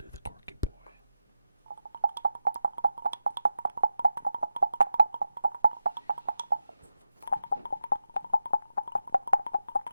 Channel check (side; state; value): both; inverted; correlation -0.91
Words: the Quirky Boy.